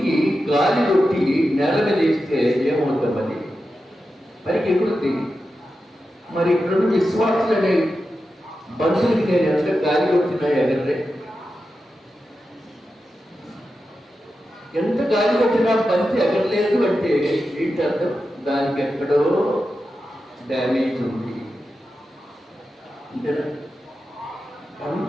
గాలి కొట్టి నేల మీద వేస్తే ఏమవుతామని పైకి ఎగురుతుంది. మరి ఇక్కడ విశ్వాసులు అనే బంతులకి నేను ఎంత గాలి కొట్టినా ఎగరలే. ఎంత గాలి కొట్టినా బంతి ఎగరలేదు అంటే ఏంటి అర్థం? దానికి ఎక్కడో డ్యామేజ్ ఉంది అంతేనా?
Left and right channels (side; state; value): both; normal; correlation 0.90